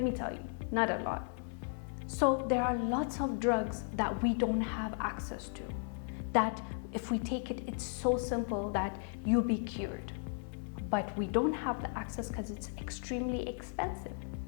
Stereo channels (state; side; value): silent; right; 54 dB below the other